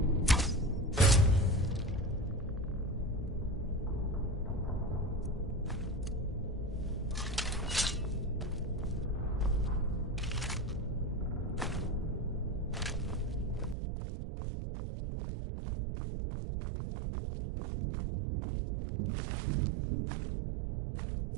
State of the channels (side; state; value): left; drops out; at 13.8 s